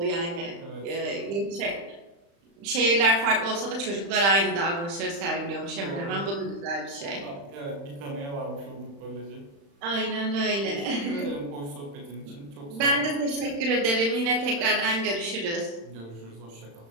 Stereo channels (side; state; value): left; late; 35 ms